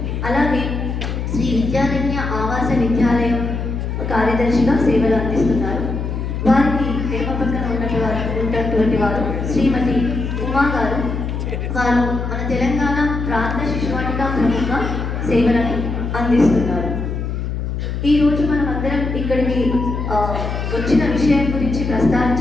అలాగే శ్రీ విద్యారణ్య ఆవాస విద్యాలయం కార్యదర్శిగా సేవలు అందిస్తున్నారు. వారికి ఎడమ పక్కన ఉన్నటువంటి వారు శ్రీమతి ఉమా గారు. వారు మన తెలంగాణ ప్రాంత శిశువాటిక ప్రముఖ సేవలను అందిస్తున్నారు. ఈరోజు మనం అందరం ఇక్కడికి వచ్చిన విషయం గురించి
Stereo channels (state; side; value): noise; left; hum, 3 dB below the sound